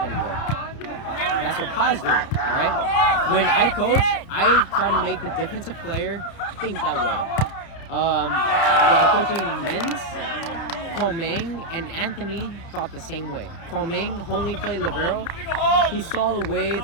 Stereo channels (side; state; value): right; late; 30 ms